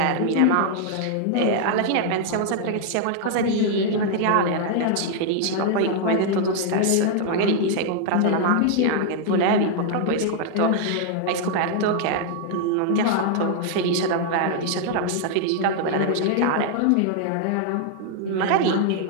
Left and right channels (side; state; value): both; different; correlation 0.00